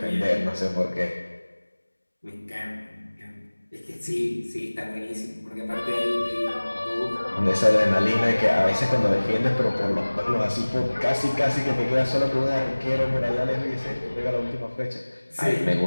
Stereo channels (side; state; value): both; inverted; correlation -1.00